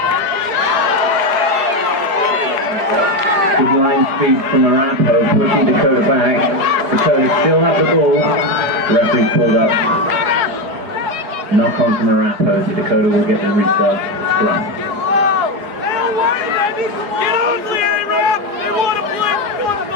Good line speed from Arapahoe, pushing Dakota back. Dakota still have the ball. Referee pulled up. Knock on from Arapahoe, so Dakota will get the restart scrum.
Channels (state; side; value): late; left; 4.9 ms